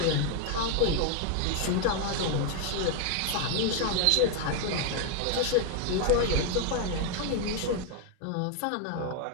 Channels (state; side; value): different; both; correlation 0.00